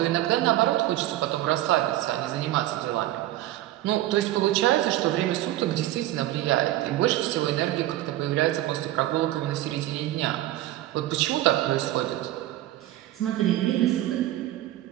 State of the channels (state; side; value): quieter; left; 15.0 dB